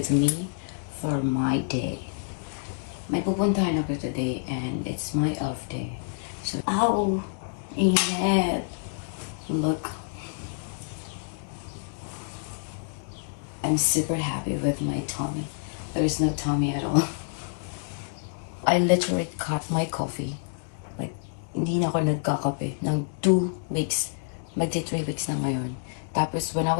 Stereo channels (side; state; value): right; silent; digital silence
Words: me for my day. May pupuntahan ako today and it's my off day. So, ow! Init! Look. I'm super happy with my tummy. There's no tummy at all. I literally cut my coffee. Like, hindi na ako nagkakape ng 2 weeks. Magti 3 weeks na ngayon. Tapos, when I